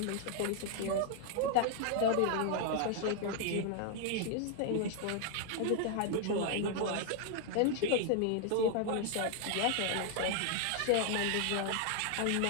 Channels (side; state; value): both; different; correlation 0.00